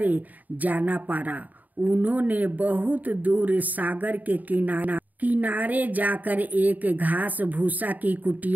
जाना पड़ा। उन्होंने बहुत दूर सागर के किनारे जाकर एक घास भूसा की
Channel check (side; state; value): left; late; 0.080 ms